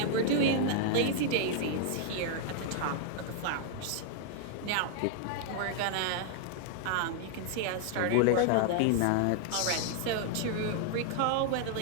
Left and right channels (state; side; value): different; both; correlation 0.00